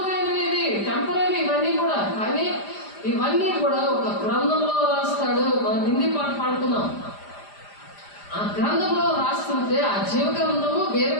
టెంపరీ ఇవన్నీ కూడా. కానీ ఇవన్నీ కూడా ఒక గ్రంథంలో రాస్తాడు. మనం హిందీ పాట పాడుతున్నాం. ఆ గ్రంథంలో రాస్తుంటే ఆ జీవ గ్రంథము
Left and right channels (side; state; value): right; late; 5.0 ms